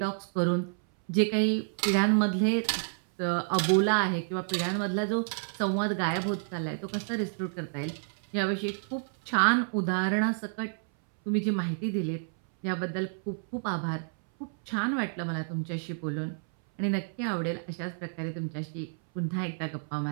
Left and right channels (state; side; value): silent; left; 58 dB below the other